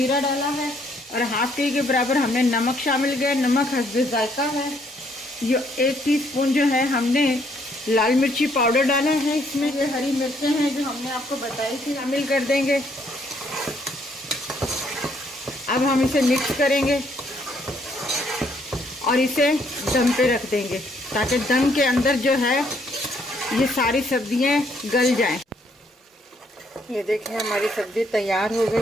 डाला है। और 1/2 टी के बराबर हमने नमक शामिल किया, नमक हस्बे जायका है। ये 1 टीस्पून जो है हमने लाल मिर्ची पाउडर डाला है इसमें। ये हरी मिर्चें हैं जो हमने आपको बताई थी, शामिल कर देंगे। अब हम इसे मिक्स करेंगे और इसे दम पे रख देंगे ताकि दम के अंदर जो है ये सारी सब्जियां गल जाएं। ये देखिए हमारी सब्ज़ी तैयार हो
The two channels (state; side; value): normal; both; correlation 0.69